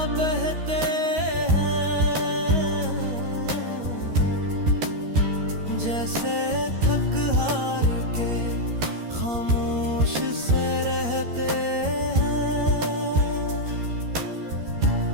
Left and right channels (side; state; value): left; late; 13 ms